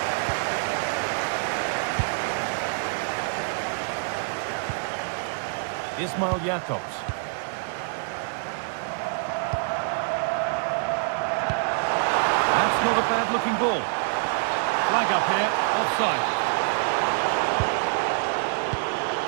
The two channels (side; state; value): left; silent; digital silence